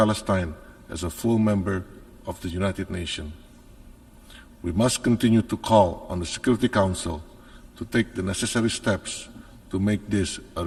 as a full member of the United Nations. We must continue to call on the Security Council to take the necessary steps to make this a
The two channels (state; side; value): identical; both; correlation 1.00